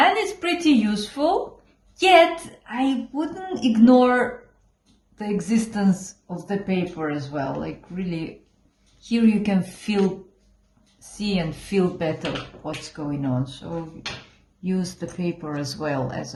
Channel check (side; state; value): both; identical; correlation 1.00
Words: it's pretty useful, yet I wouldn't ignore the existence of the paper as well. Like really, here you can see and feel better what's going on. So use the paper as well as